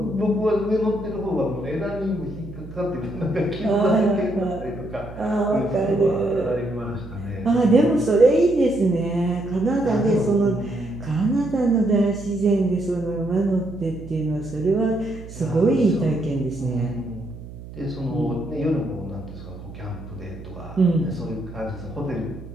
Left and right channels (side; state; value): right; noise; hum, 14 dB below the sound